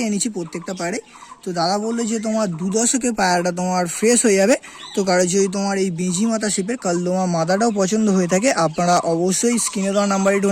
এনেছি প্রত্যেকটা পায়রাই। তো দাদা বললো যে তোমার 2 দশকে পায়রাটা তোমার ফ্রেশ হয়ে যাবে। তো কারো যদি তোমার এই বেঁজি মাথা শেপের কালদমা মাদাটাও পছন্দ হয়ে থাকে, আপনারা অবশ্যই স্ক্রিনে দেওয়া নাম্বারে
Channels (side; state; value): both; identical; correlation 1.00